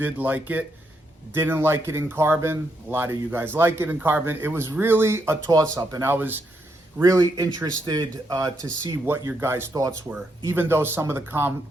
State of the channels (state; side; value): normal; both; correlation 0.79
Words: like it, didn't like it in carbon. A lot of you guys like it in carbon. It was really a toss-up, and I was really interested to see what your guys' thoughts were, even though some of the